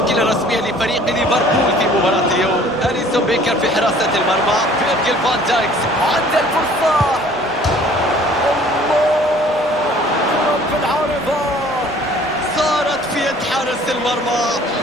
الرسمية لفريق ليفربول في مباراة اليوم: أليسون بيكر في حراسة المرمى، فيرجيل فان دايكس عند الفرصة، حارس المرمى.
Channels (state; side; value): noise; right; rumble, 24 dB below the sound